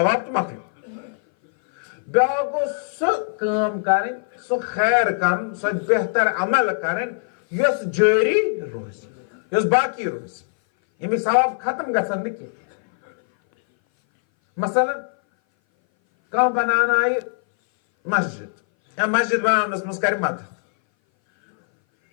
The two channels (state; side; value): silent; right; 59 dB below the other